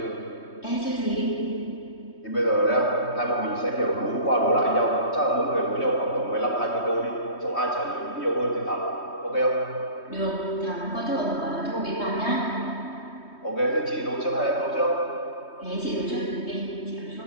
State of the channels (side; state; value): right; late; 3.2 ms